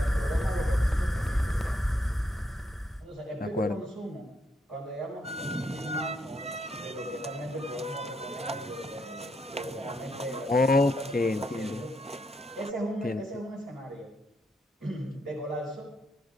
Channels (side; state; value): both; normal; correlation 0.77